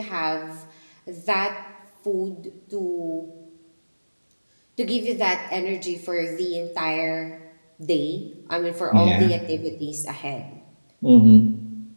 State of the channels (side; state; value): both; inverted; correlation -1.00